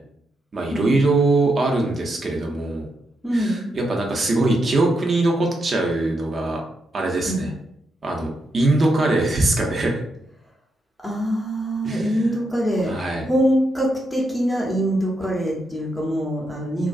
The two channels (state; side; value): normal; both; correlation 0.82